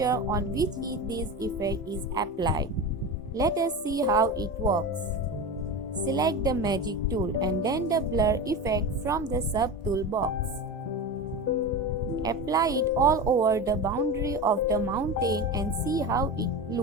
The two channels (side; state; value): both; normal; correlation 0.25